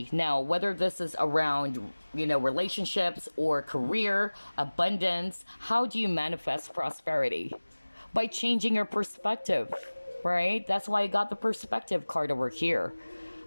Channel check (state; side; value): inverted; both; correlation -1.00